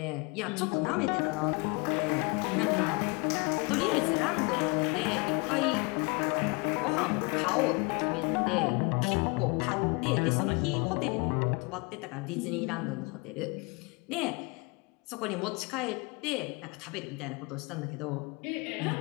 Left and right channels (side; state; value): right; quieter; 29.0 dB